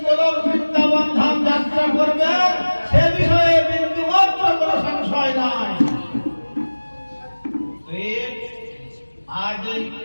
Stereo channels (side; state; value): both; inverted; correlation -1.00